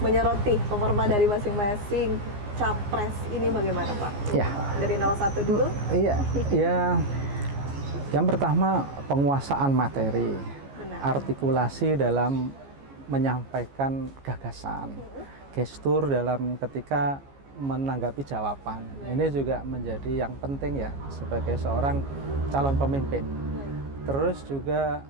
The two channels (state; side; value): late; left; 15 ms